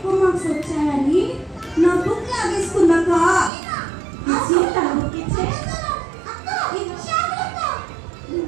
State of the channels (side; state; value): left; drops out; at 3.5 s